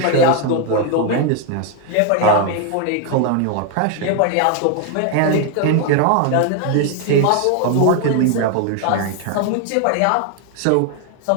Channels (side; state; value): both; different; correlation 0.00